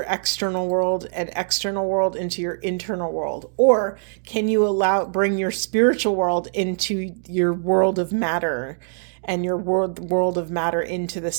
external world and external world into your internal world? Or can you bring your spiritual world into your world of matter and your world of matter into the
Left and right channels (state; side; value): silent; left; digital silence